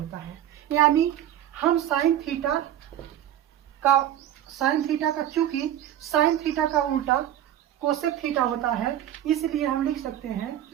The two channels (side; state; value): left; quieter; 11.7 dB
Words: है। यानी हम साइन थीटा का चूंकि साइन थीटा का उल्टा कोसेक थीटा होता है, इसलिए हम लिख सकते हैं